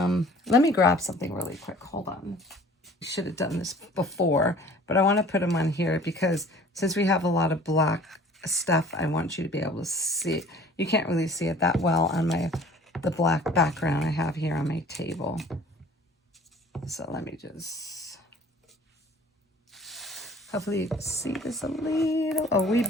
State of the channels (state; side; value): normal; both; correlation 0.49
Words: me grab something really quick. Hold on. I should have done this before, but I want to put them on here because since we have a lot of black stuff, I want you to be able to see it. You can't really see it that well on the black background I have here on my table. So let me just, hopefully you can see this a wee